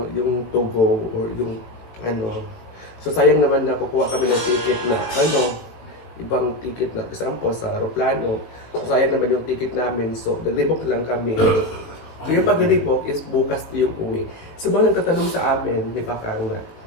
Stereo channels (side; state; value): right; late; 19 ms